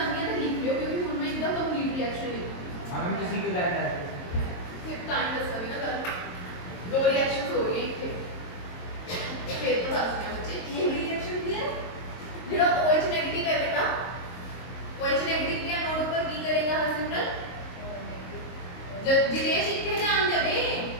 ਹੈ ਤਾਂ ਲਿਖ ਲਿਓ ਕਿਉਂਕਿ ਹੁਣ ਮੈਂ ਇੱਕਦਮ ਕੰਪਲੀਟ ਰਿਐਕਸ਼ਨ ਲਿਖੂੰਗੀ हम किसी को जानना है ਫਿਰ ਤਾਂ ਹੀ ਦੱਸਾਂਗੀ ਨਾ ਗੱਲ ਦੋ ਰਿਐਕਸ਼ਨਸ ਹੋ ਰਹੀਆਂ ਇੱਥੇ ਫਿਰ ਤਾਂ ਦੱਸਦੇ ਹਾਂ ਬੱਚੇ ਇਹ ਰਿਐਕਸ਼ਨ ਕੀ ਹੈ ਜਿਹੜਾ OH ਨੈਗੇਟਿਵ ਹੈ ਬੇਟਾ OH नेगेटिव के नोड पर की करेगा हरसिमरत जब जिनेश इतने ध्यान देवे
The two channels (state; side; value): late; right; 22 ms